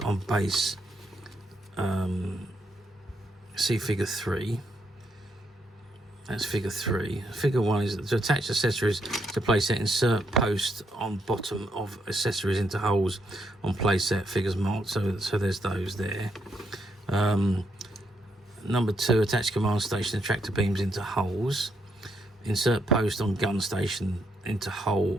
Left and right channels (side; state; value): both; normal; correlation 0.77